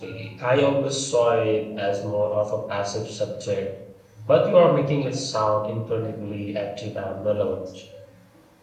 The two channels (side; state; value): both; identical; correlation 1.00